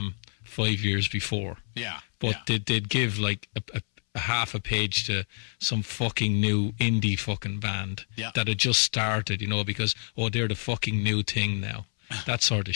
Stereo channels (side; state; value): right; silent; 60 dB below the other